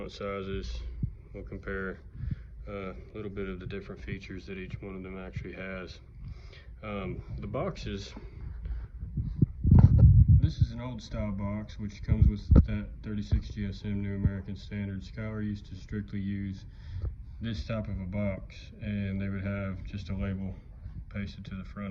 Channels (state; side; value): identical; both; correlation 1.00